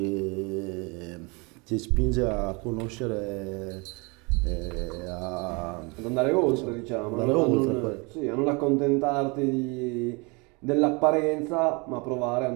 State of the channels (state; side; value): quieter; left; 29.3 dB